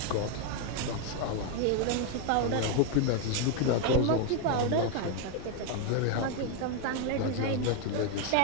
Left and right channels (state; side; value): different; both; correlation 0.01